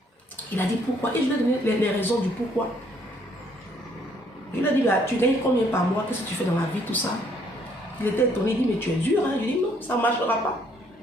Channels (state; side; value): normal; both; correlation 0.66